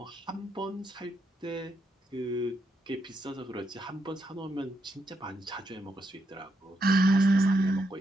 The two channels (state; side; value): normal; both; correlation 0.80